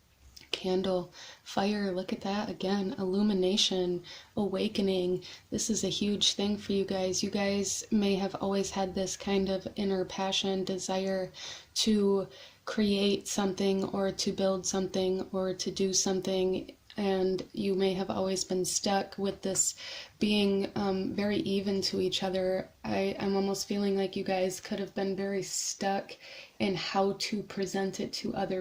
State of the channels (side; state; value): both; identical; correlation 1.00